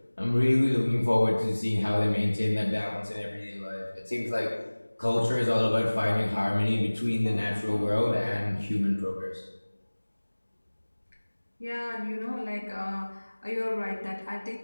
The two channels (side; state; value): both; inverted; correlation -1.00